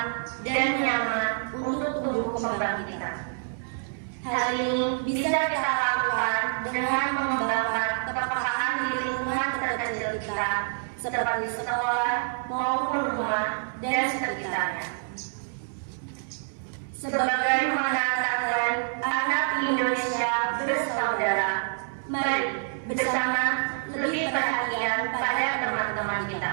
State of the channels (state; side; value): silent; left; digital silence